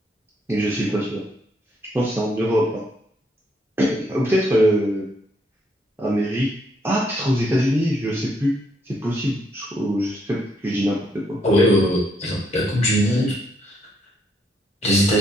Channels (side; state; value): both; normal; correlation 0.73